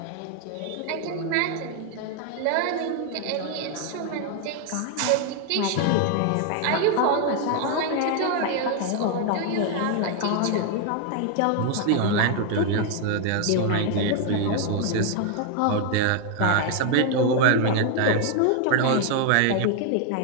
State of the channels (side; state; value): both; different; correlation 0.00